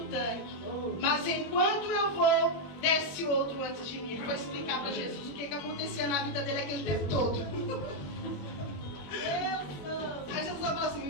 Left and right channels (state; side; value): late; right; 21 ms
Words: tanque. Mas enquanto eu vou, desce outro antes de mim. Ele foi explicar para Jesus o que acontecia na vida dele aquele tempo todo. Aí Jesus falou